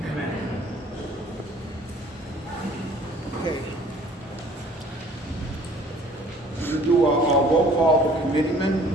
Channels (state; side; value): normal; both; correlation 0.54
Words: Amen. Okay. We're going to do a roll call of the